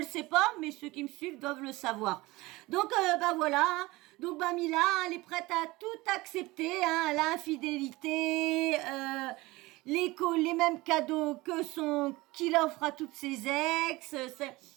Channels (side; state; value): left; quieter; 20.8 dB